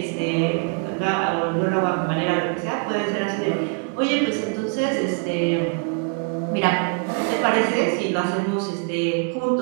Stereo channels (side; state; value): left; quieter; 38.4 dB